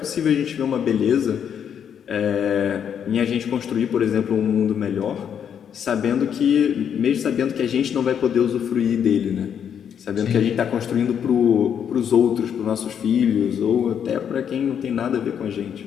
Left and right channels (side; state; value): right; quieter; 8.3 dB